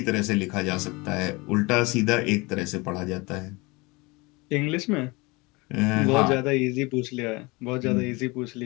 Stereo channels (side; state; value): right; quieter; 25.1 dB